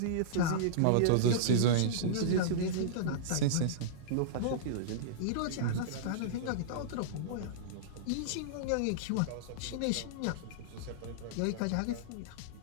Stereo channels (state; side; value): different; both; correlation -0.03